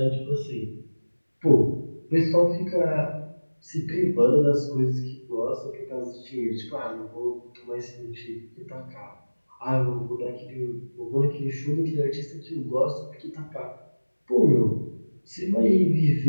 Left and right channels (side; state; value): both; inverted; correlation -1.00